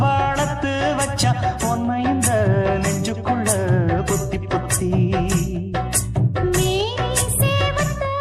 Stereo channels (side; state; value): both; identical; correlation 1.00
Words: வளர்த்து வச்சான் உன்னை இந்த நெஞ்சுக்குள்ள புத்தி புத்தி